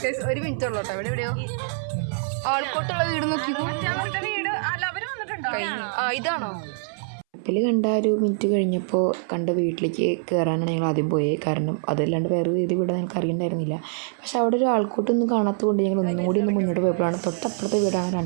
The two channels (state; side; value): silent; left; 62 dB below the other